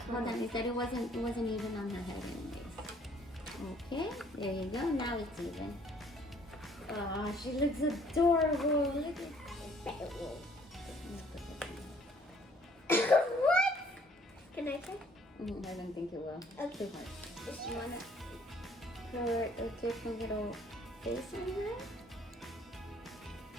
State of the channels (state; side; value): normal; both; correlation 0.60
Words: Hold on, off. you said it wasn't even on her head anyways. Okay, there you go. Now it's even. Oh, she looks adorable. Look at that. What? Can I try? I don't think it will. Okay. Too hard. Just want to put a different little face on here.